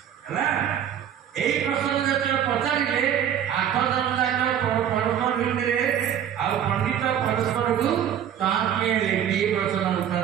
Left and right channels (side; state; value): left; quieter; 9.6 dB